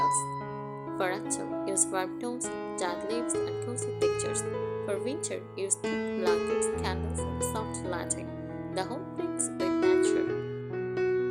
For autumn, use warm tones, dried leaves, and cozy textures. For winter, use thick blankets, candles, and soft lighting. The home brings with nature.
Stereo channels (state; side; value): identical; both; correlation 1.00